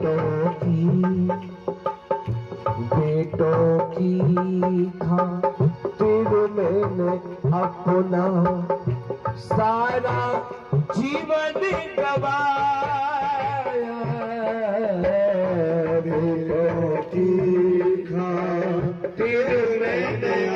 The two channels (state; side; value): identical; both; correlation 1.00